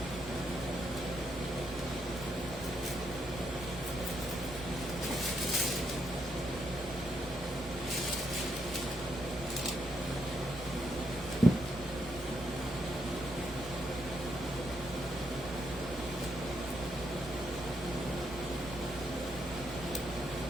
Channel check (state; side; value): normal; both; correlation 0.78